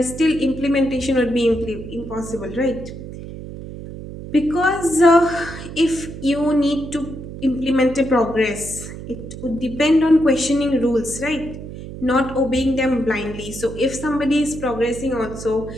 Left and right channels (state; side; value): noise; right; hum, 11 dB below the sound